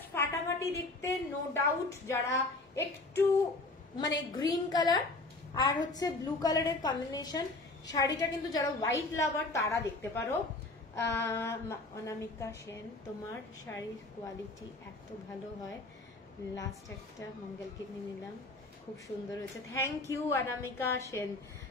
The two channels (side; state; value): right; quieter; 3.0 dB